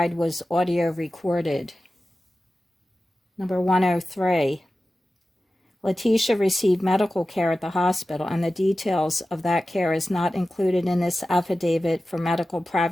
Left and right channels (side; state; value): both; normal; correlation 0.95